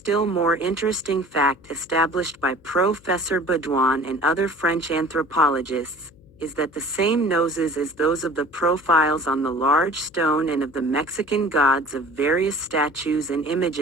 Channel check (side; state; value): left; noise; hum, 27 dB below the sound